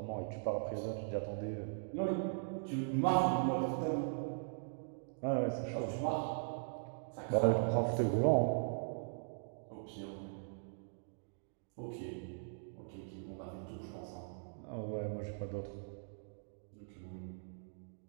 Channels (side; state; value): left; silent; digital silence